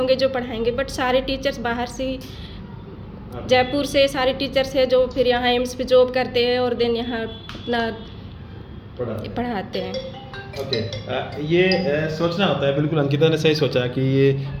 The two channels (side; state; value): both; identical; correlation 1.00